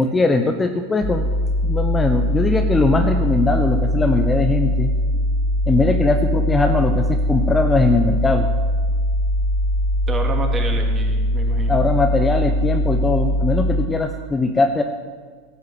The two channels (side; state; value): both; normal; correlation 0.58